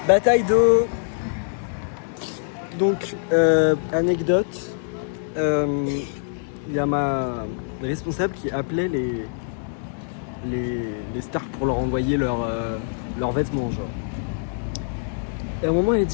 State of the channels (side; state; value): right; silent; digital silence